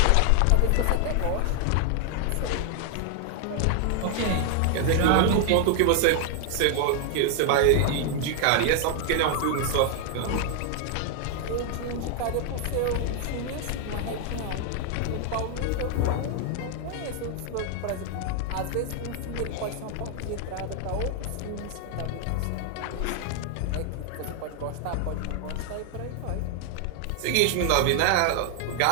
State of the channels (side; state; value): both; different; correlation 0.00